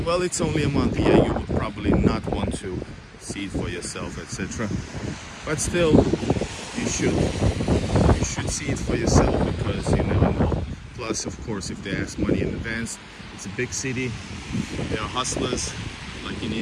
Well, it's only a month. Yeah, you would probably not want to see it for yourself, etc. But still, you should see it for yourself, because you never know. Plus, of course, if they ask money in advance, it's a big city. There are hustlers, like in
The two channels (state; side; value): identical; both; correlation 1.00